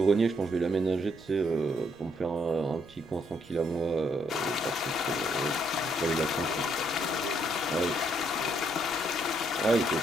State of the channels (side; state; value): right; noise; rumble, 26 dB below the sound